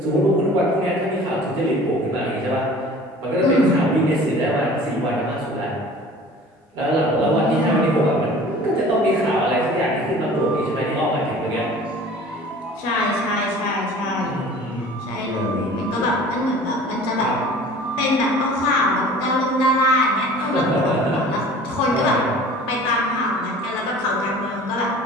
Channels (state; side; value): normal; both; correlation 0.45